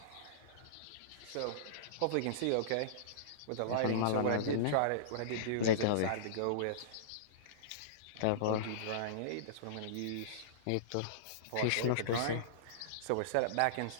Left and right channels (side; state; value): both; different; correlation -0.03